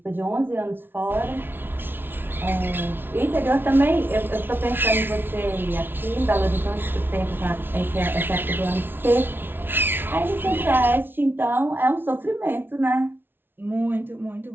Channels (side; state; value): left; late; 0.10 ms